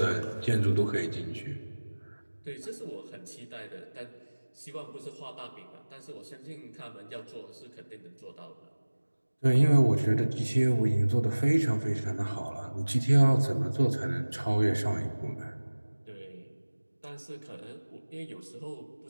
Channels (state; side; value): inverted; both; correlation -1.00